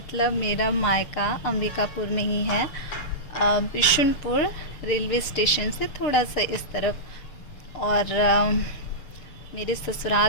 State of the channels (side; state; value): right; late; 6.8 ms